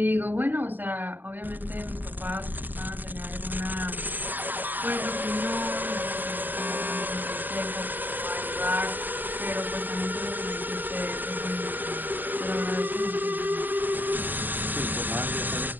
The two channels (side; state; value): left; late; 0.089 ms